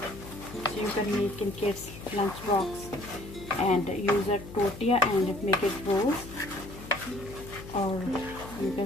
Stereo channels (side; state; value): left; noise; hum, 14 dB below the sound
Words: So you can make in kids' lunch box and use a tortilla and make it rolls, or you